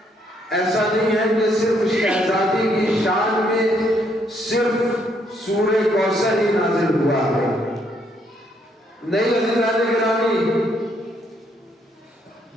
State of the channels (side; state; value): both; normal; correlation 0.71